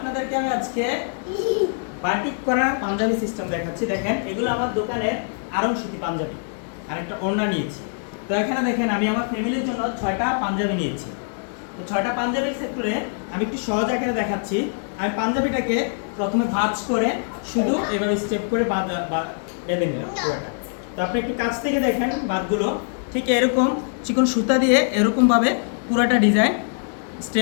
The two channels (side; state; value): right; silent; digital silence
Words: আমি আজকে বাটিক করা পাঞ্জাবি সিস্টেম দেখাচ্ছি। দেখেন, এগুলো আমার দোকানের আরং সুতি পাঞ্জাবি আর একটা ওড়না নিয়েছি। তো এখানে দেখেন, আমি আমার ফ্যামিলির জন্য 6টা পাঞ্জাবি নিয়েছি। তো 6টা পাঞ্জাবির সেক্টরে আমি একটু সহজ আকারে দেখাচ্ছি। আমি পাঞ্জাবিটাকে প্রথমে ভাঁজ করে শুধু এভাবে স্টেপ করে বেঁধে নিলাম পুরোটা। তো আপনি একটু কাছ থেকে দেখেন বাঁধগুলো ঠিক এরকম চিকন সুতা দিয়ে এরকমভাবে পুরোটা design